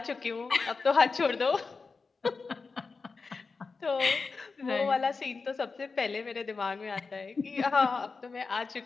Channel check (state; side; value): quieter; right; 4.5 dB